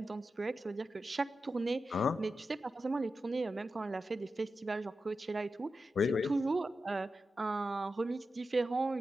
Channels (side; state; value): both; normal; correlation 0.91